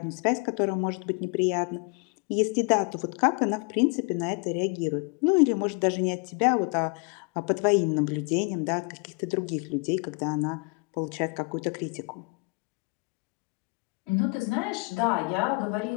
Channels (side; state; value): right; quieter; 31.6 dB